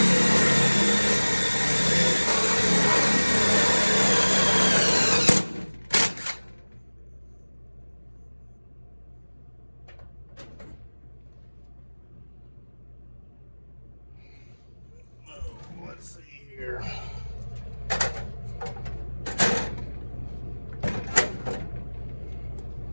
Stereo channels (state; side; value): inverted; both; correlation -1.00